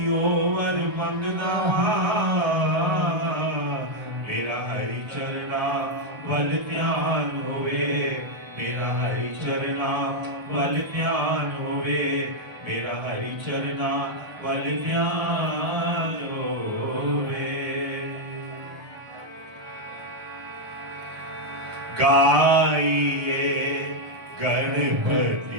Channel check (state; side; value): late; left; 1.2 ms